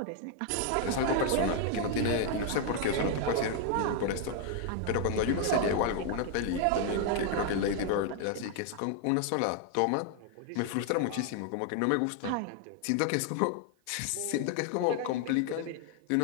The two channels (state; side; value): different; both; correlation 0.00